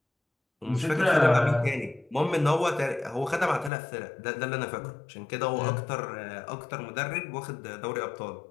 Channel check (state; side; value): drops out; right; at 3.7 s